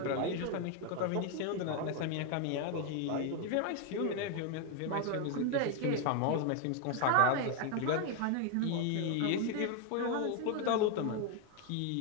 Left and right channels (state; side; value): different; both; correlation 0.01